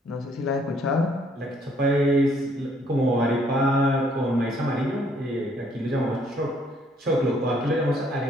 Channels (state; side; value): normal; both; correlation 0.65